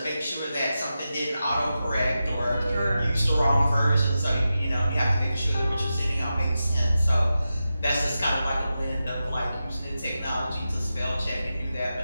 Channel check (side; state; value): both; inverted; correlation -0.91